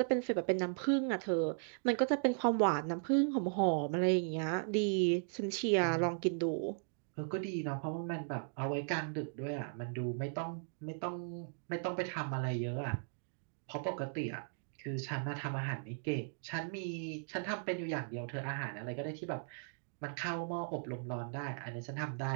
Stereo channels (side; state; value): left; silent; digital silence